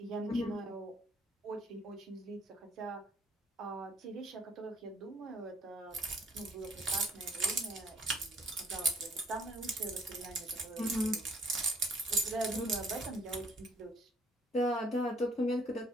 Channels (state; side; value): normal; both; correlation 0.59